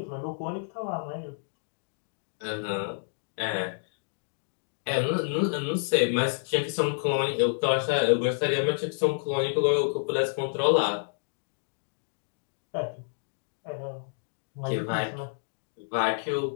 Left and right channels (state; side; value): silent; right; digital silence